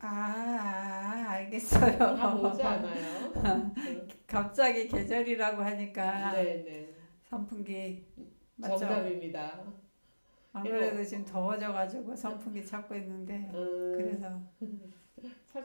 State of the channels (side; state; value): both; inverted; correlation -1.00